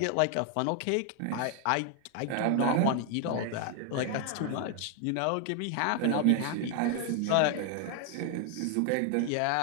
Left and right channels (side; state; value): both; different; correlation 0.00